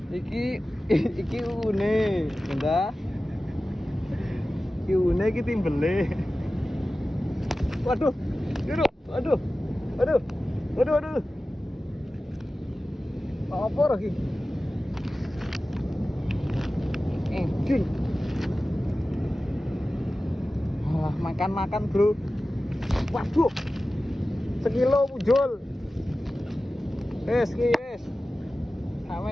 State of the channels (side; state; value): both; normal; correlation 0.95